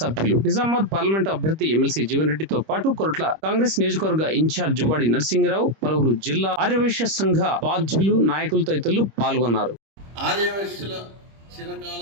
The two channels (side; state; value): left; late; 25 ms